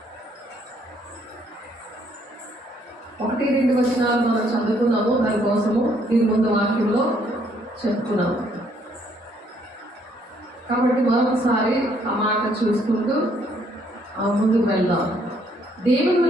1-2 వచనాలు మనం చదువుకున్నాము. దానికోసము దీని ముందు వాక్యంలో చెప్పుకున్నాము కాబట్టి మరొకసారి ఆ మాట చూసుకుంటూ ముందుకు వెళ్దాం. దేవుని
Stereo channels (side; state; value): both; normal; correlation 0.67